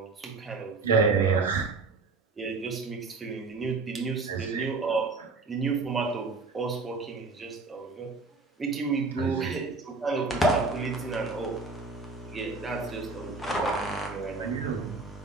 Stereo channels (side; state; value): left; quieter; 3.8 dB